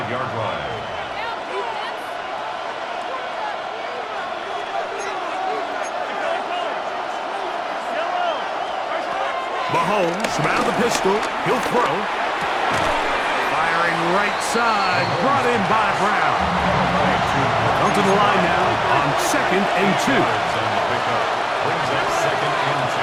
line. Mahomes from out of the pistol. He'll throw. Firing right side. Brought in by Brown. Come to the line now on second and 2. Brings up second and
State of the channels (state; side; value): identical; both; correlation 1.00